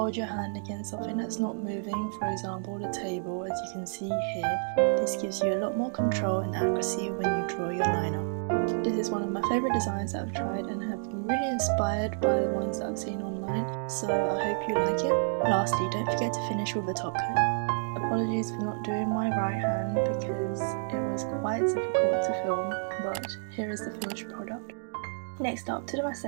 your hand against something that's not moving, for example the table, as you can see here. This gives you a lot more control and accuracy when you draw your liner. This is one of my favourite designs that I've tried and have been really inspired by the ones that I've seen online, so I hope you like it. Lastly, don't forget to finish with a top coat. Apologies for not doing my right hand because it was quite difficult to film, but here is the finished product. Next up, to do my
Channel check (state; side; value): silent; left; digital silence